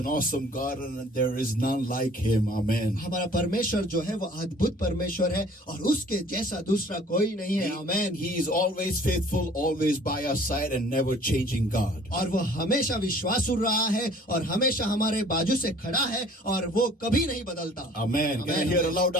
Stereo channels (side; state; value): both; normal; correlation 0.53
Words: awesome God and there is none like him. Amen. हमारा परमेश्वर जो है वो अद्भुत परमेश्वर है और उसके जैसा दूसरा कोई नहीं है। आमेन। He is always faithful, always by our side and never changing God. और वो हमेशा विश्वासु रहा है और हमेशा हमारे बाजू से खड़ा है और वो कभी नहीं बदलता। Amen. Can I hear a loud